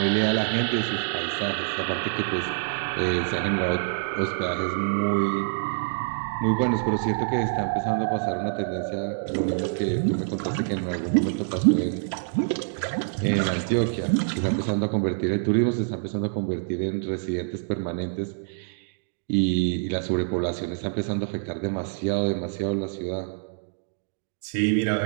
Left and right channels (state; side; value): silent; left; digital silence